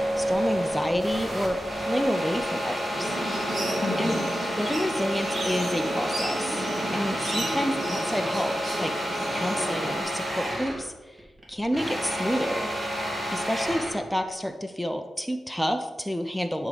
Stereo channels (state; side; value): normal; both; correlation 0.92